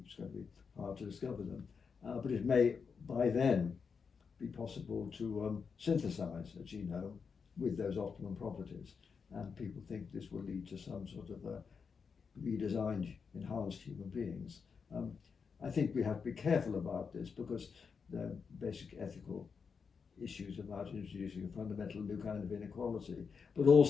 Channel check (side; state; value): right; quieter; 5.8 dB